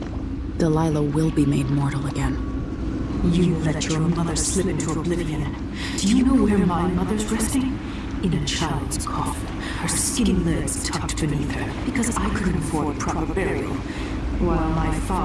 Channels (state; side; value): identical; both; correlation 1.00